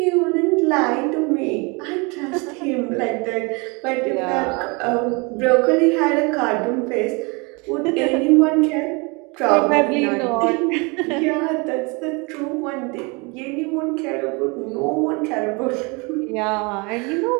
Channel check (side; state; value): left; quieter; 29.2 dB